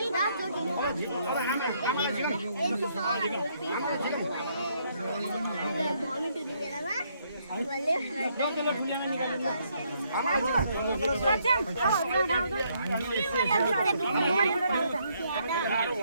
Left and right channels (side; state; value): both; inverted; correlation -0.72